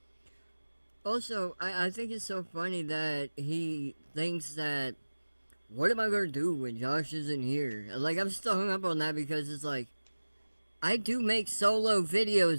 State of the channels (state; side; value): inverted; both; correlation -1.00